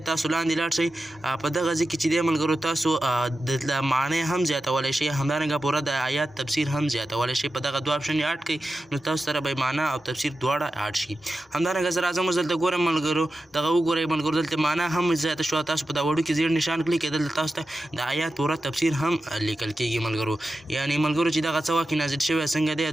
تاسو لاندې لاړ شئ، په دغه ځای کې چې دی ملګرو تاسو د معنی هم زیاتولی شئ، همدارنګه پوره د آیات تفسیر هم زیاتولی شئ. په دغه دوه آپشن یې اډ کړئ نو تاسو سره به معنا او تفسیر دواړه اډ شي. همدارنګه زه راځم اوس دلته ګورم ملګرو، دغه وګورئ ملګرو دلته معنا هم زیاته شوه. تاسو په دا وړو کې زیړ نشان کلیک کړئ، دلته تاسو ته د آیات پوره تفسیر هم لیکل کېږي. ملګرو یعنې ملګرو چې دغه څه وخت نازل شوی څنګه دی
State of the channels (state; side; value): normal; both; correlation 0.92